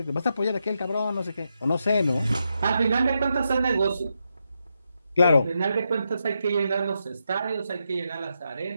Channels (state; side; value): inverted; both; correlation -0.84